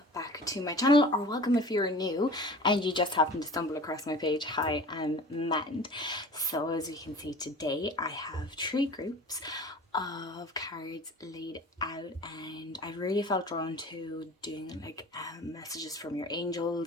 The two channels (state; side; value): normal; both; correlation 0.40